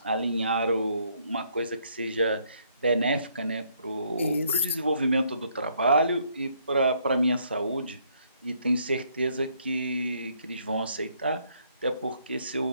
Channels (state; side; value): inverted; both; correlation -0.69